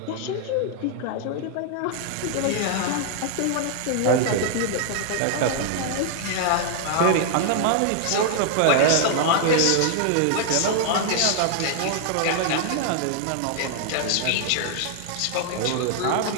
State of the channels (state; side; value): different; both; correlation 0.00